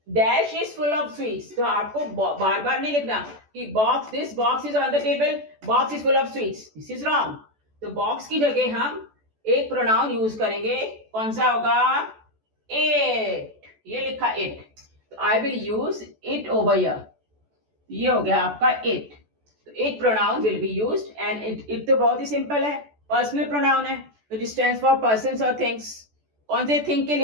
Dash is full of sweets. तो आपको बार बार नहीं लिखना कि box, this box is on the table, box is full of sweets. This is wrong. तो बॉक्स की जगह हम एक प्रोनाउन यूज करेंगे. कौन सा होगा? इट. ये लिखा इट. तो I will use it over here. ये हो गया आपका इट. तो it pronoun will be used and it तो बहुत ही सिंपल है. पर्सनल प्रोनाउन है विच स्टैंड्स फॉर पर्सन्स और थिंग्स. कौन से थिंग के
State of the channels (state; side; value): late; left; 14 ms